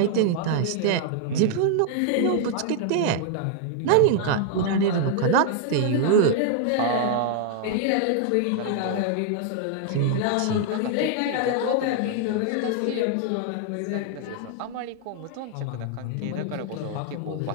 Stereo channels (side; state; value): both; different; correlation 0.00